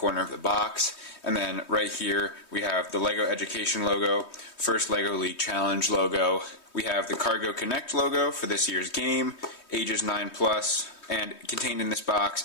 of the box. And then right here we have the Lego Education logo, First Lego League Challenge logo. We have the Cargo Connect logo for this year's game, ages 9+, and contained in this box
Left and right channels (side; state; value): right; late; 3.2 ms